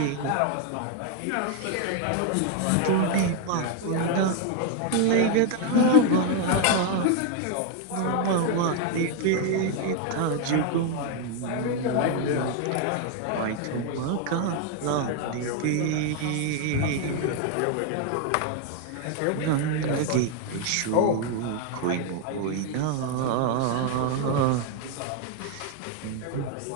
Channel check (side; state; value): both; different; correlation 0.00